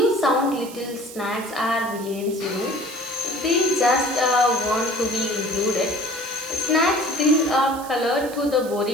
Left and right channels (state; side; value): noise; right; hiss, 16 dB below the sound